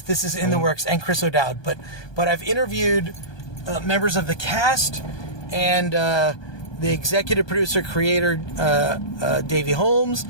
in the works, and Chris O'Dowd. But I've interviewed members of the cast and the executive producer, creator Davey Holmes,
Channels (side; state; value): right; late; 1.2 ms